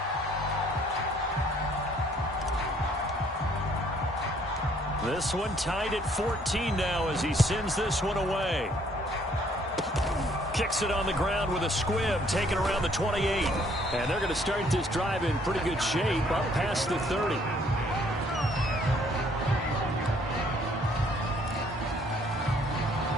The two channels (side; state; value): both; normal; correlation 0.63